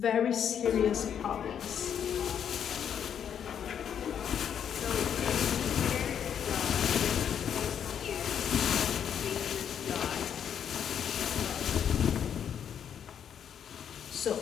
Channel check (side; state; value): right; quieter; 8.5 dB